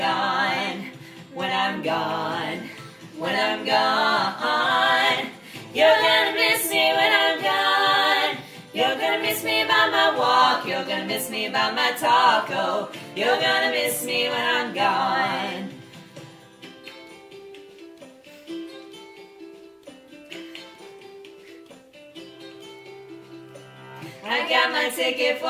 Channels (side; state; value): both; identical; correlation 1.00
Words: when I'm gone, when I'm gone. You're gonna miss me when I'm gone. You're gonna miss me by my walk, you're gonna miss me by my talk. Oh, you're gonna miss me when I'm gone. I got my ticket